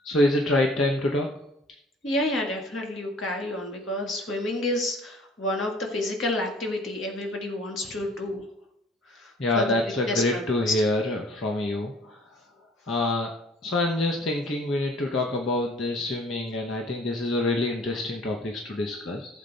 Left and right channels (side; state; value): both; normal; correlation 0.53